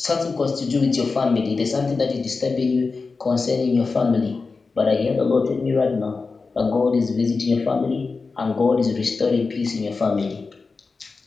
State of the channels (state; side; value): quieter; right; 4.3 dB